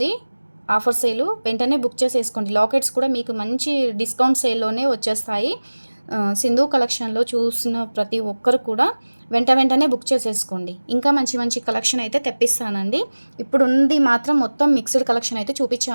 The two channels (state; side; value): inverted; both; correlation -1.00